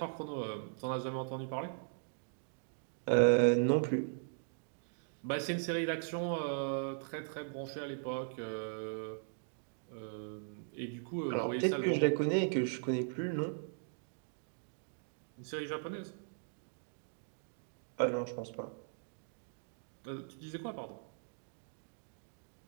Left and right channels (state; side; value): silent; left; digital silence